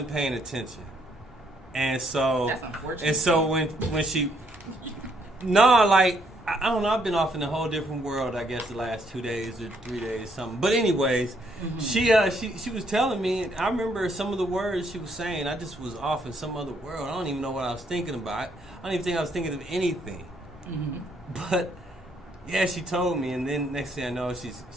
paying attention. And so that's unfortunate. And so when she, I don't know. I've been off in a whole different world. I guess the last 2 days or 3 days, something. But anyways, she was telling me. I remember some of the words she was saying. I just was off in some other world. I don't even know what I was thinking about. I don't even think I was thinking of anything. But yeah, she told me, and then next thing I know, she's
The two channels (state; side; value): normal; both; correlation 0.70